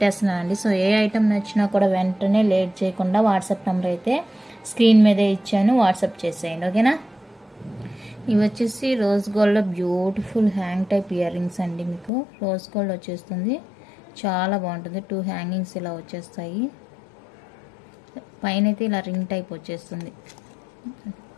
సో ఏ ఐటమ్ నచ్చినా కూడా వెంటనే లేట్ చేయకుండా వాట్సాప్ నెంబర్ అయితే స్క్రీన్ మీదే ఇచ్చాను, వాట్సాప్ చేసేయండి, ఓకేనా. ఇవి వచ్చేసి రోజ్ గోల్డ్లో beautiful hang type ear rings అండి. మీకు రోజ్ గోల్డ్ వచ్చేస్తుంది, చాలా బాగుంటుంది. 2 హ్యాంగింగ్స్ ఇలా వచ్చేస్తాయి, పైన అయితే ఇలా రింగ్ టైప్ వచ్చేస్తుంది,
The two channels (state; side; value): drops out; right; at 12.1 s